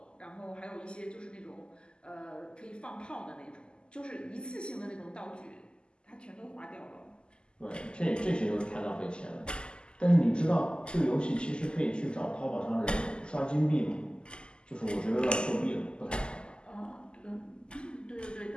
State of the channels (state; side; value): late; right; 0.049 ms